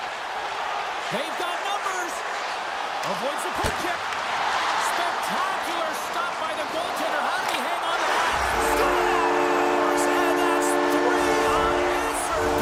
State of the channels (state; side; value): identical; both; correlation 1.00